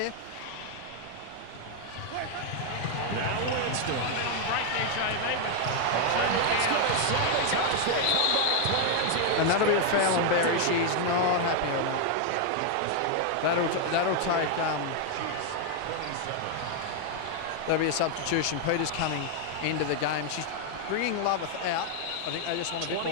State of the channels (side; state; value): both; different; correlation 0.00